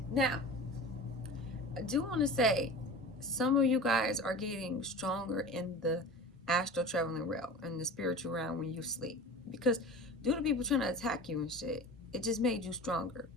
Now, I do want to say some of you guys are getting stronger in the astral traveling realm and the spiritual realm when you sleep, because due to people trying to attack you and shit, it just made you stronger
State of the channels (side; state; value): both; normal; correlation 0.35